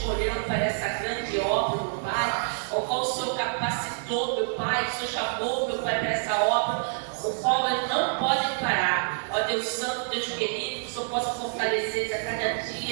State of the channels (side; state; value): left; silent; 60 dB below the other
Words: para essa grande obra, meu Pai, ao qual o Senhor capacitou, meu Pai, o Senhor chamou, meu Pai, para essa obra, o qual eles não podem parar. Ó Deus Santo, Deus querido, que o Senhor possa fortalecer eles a cada